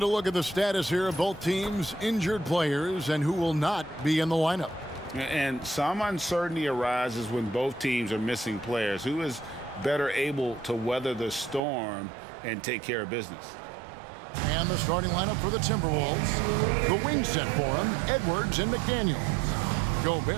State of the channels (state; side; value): drops out; left; at 11.6 s